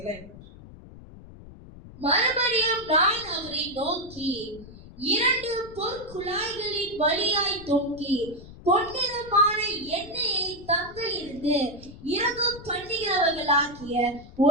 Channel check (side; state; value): left; noise; rumble, 18 dB below the sound